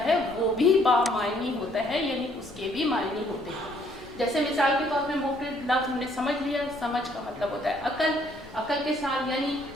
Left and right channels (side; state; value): left; noise; rumble, 22 dB below the sound